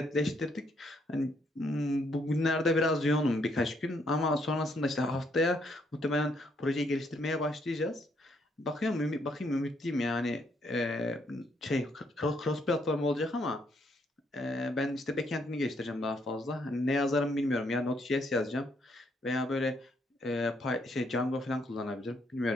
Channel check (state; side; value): normal; both; correlation 0.72